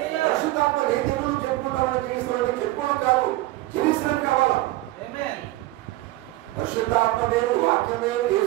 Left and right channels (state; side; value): quieter; left; 18.1 dB